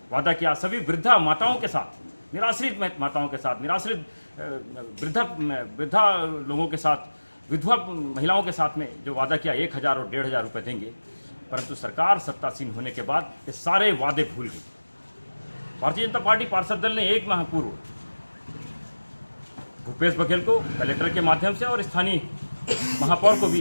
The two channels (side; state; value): both; inverted; correlation -1.00